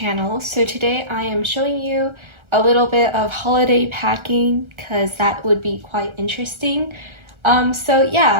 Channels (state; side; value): late; left; 1.3 ms